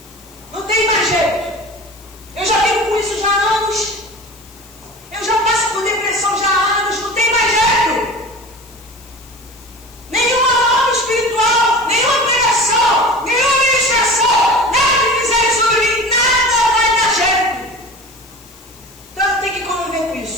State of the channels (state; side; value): noise; left; hiss, 24 dB below the sound